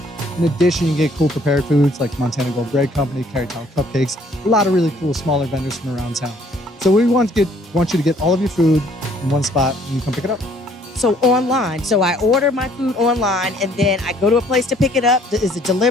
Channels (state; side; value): normal; both; correlation 0.61